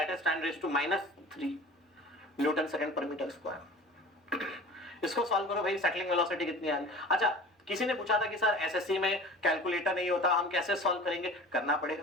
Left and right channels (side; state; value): both; normal; correlation 0.41